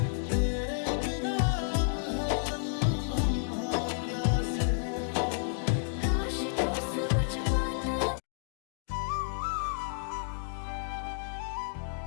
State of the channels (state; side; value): silent; right; digital silence